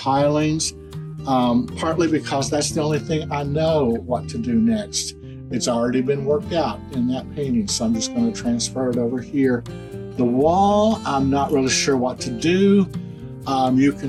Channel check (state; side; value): identical; both; correlation 1.00